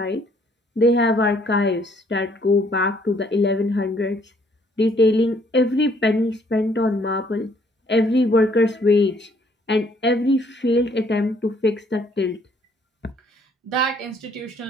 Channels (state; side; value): normal; both; correlation 0.64